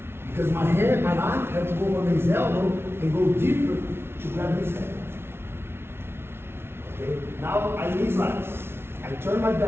because my hand, my arm has to go on his elbow and go deeper to grab his head. Okay? Now I knee slice. I turn my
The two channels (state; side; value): late; left; 0.12 ms